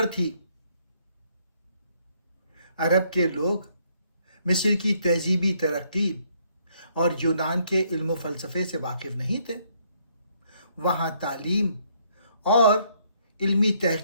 تھی۔ عرب کے لوگ مصر کی تہذیبی ترقی اور یونان کے علم و فلسفے سے واقف نہیں تھے۔ وہاں تعلیم اور علمی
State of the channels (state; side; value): inverted; both; correlation -0.69